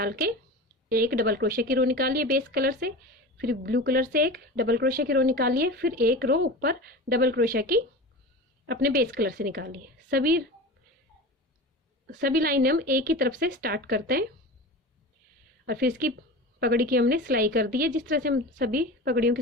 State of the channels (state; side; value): normal; both; correlation 0.31